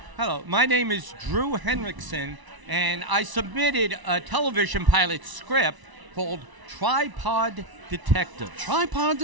Hello, my name is Drew Henriksen, and I submitted a television pilot script called Tripod Detective. Tripod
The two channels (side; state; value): left; late; 1.0 ms